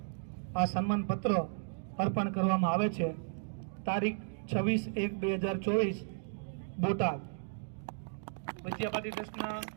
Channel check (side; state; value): left; silent; digital silence